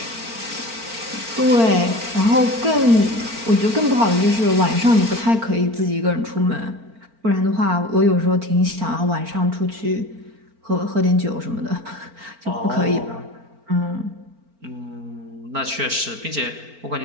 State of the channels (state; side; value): late; left; 4.4 ms